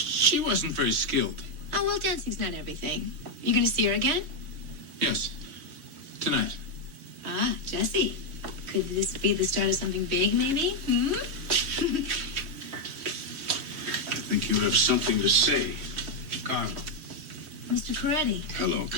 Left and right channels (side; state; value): left; late; 3.1 ms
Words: wasn't very skilled. Oh, well, dancing's not everything. You gonna see her again? Yes, tonight. Ah, Jesse. Could this be the start of something big, maybe? I think you have something to say. Carl. Mr. Coretti, Hello,